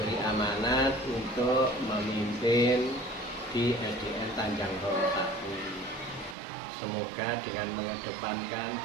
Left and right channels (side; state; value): left; drops out; at 6.4 s